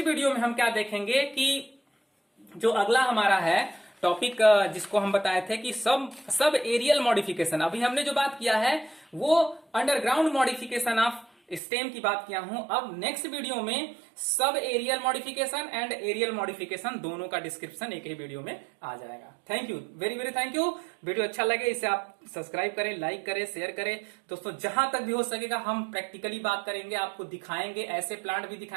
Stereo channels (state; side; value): drops out; left; at 11.6 s